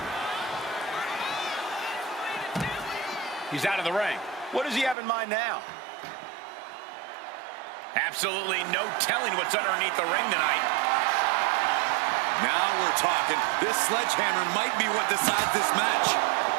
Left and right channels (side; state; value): left; drops out; at 5.0 s